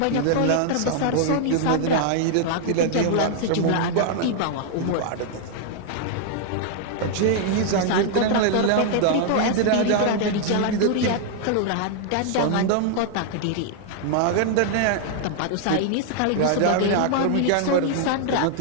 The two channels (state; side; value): different; both; correlation 0.00